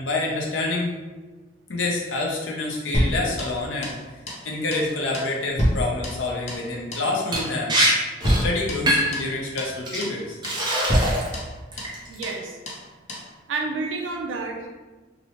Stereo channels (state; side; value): normal; both; correlation 0.35